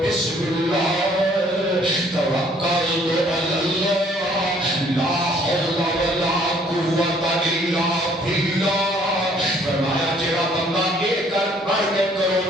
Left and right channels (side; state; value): both; normal; correlation 0.61